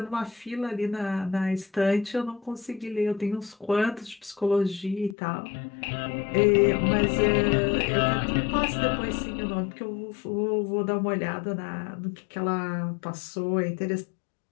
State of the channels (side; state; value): right; drops out; at 5.2 s